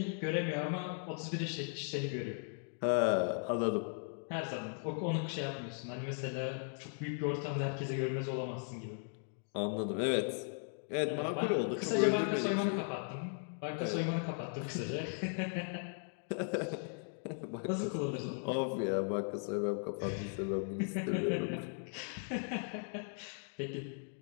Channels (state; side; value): silent; right; 53 dB below the other